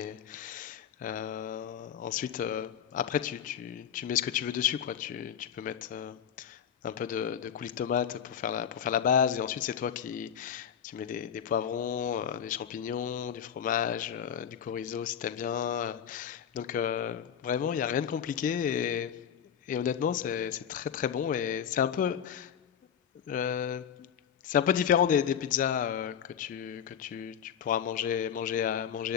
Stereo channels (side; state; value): right; quieter; 8.5 dB